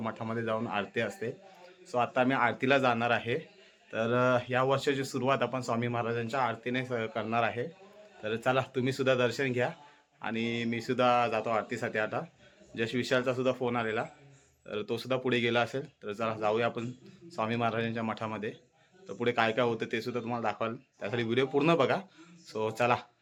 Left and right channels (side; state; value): both; identical; correlation 1.00